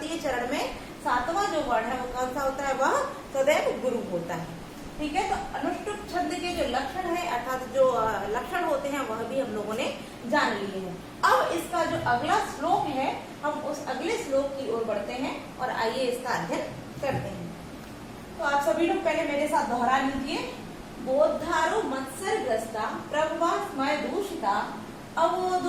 चरण में 7वां जो वर्ण है वो कौन सा होता है? वह सदैव गुरु होता है। ठीक है, तो अनुष्टुप छंद के जो लक्षण है अर्थात जो लक्षण होते हैं वह भी हम लोगों ने जान लिए हैं। अब इसका जो अगला श्लोक है, हम उस अगले श्लोक की ओर बढ़ते हैं और आइए इसका अध्ययन करते हैं। तो आप सभी लोग पहले मेरे साथ दोहरा लीजिए। बोद्धारो मत्सरग्रस्ता प्रभवा स्मय दूषिता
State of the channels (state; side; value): identical; both; correlation 1.00